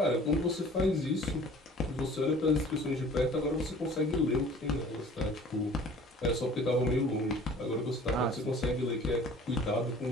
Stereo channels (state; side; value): normal; both; correlation 0.48